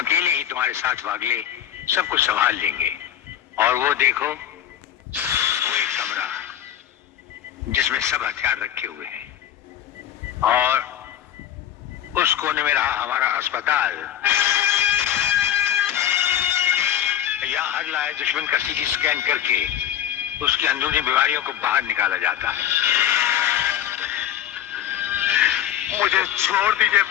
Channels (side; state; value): right; quieter; 10.7 dB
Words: ही तुम्हारे साथ वागले सब कुछ संभाल लेंगे। और वो देखो, वो एक कमरा जिसमें सब हथियार रखे हुए हैं, और उस कोने में रहा हमारा अस्पताल। यहाँ हर लाए दुश्मन का सीटी स्कैन करके उसकी अंदरूनी बीमारियों को बाहर निकाला जाता है। मुझे छोड़ दीजिए